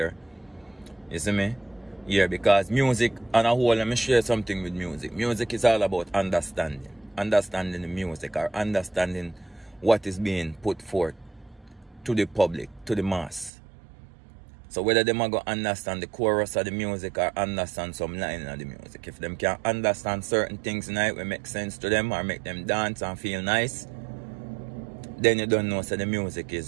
You see me? Yeah, because music, on a whole, let me share something with music. Music is all about understanding. Understanding the music, or understanding what is being put forth to the public, to the mass. So whether them are going to understand the chorus of the music or understand some line of the music. If them can understand certain things in it will make sense to them or make them dance and feel nice, then you don't know so the music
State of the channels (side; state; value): left; drops out; at 13.5 s